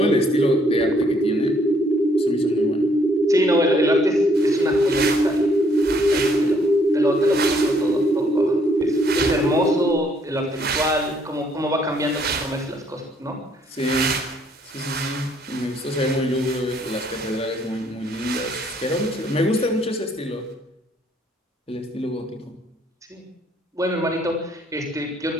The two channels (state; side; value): normal; both; correlation 0.66